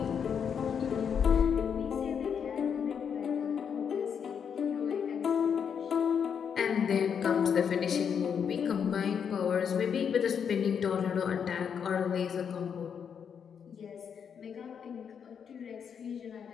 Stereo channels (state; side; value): quieter; right; 7.3 dB